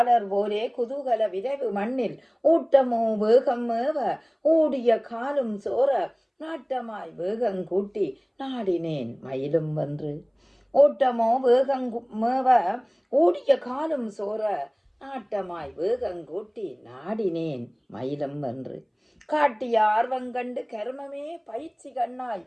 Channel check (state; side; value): identical; both; correlation 1.00